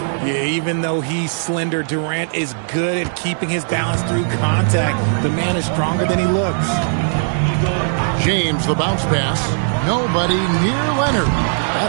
Yeah, even though he's slender, Durant is good at keeping his balance through contact. The man is stronger than he looks. James, the bounce pass. Nobody near Leonard.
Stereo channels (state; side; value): silent; left; digital silence